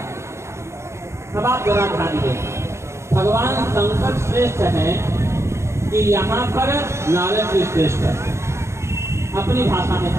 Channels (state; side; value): late; left; 0.13 ms